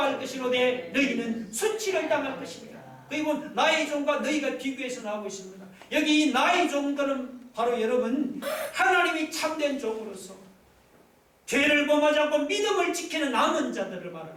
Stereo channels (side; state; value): both; identical; correlation 1.00